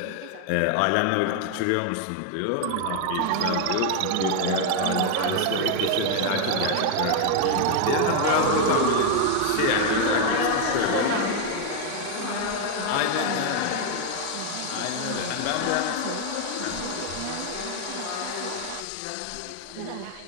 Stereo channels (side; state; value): both; different; correlation 0.01